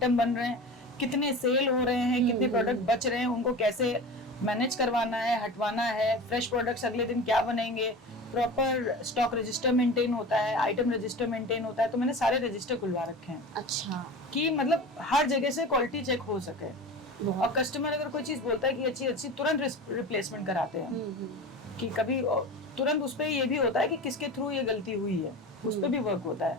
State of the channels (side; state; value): both; normal; correlation 0.33